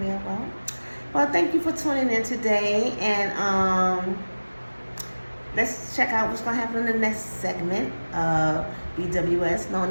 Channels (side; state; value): both; inverted; correlation -1.00